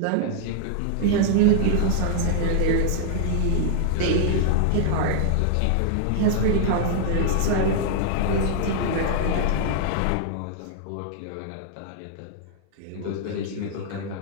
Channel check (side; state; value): both; different; correlation -0.01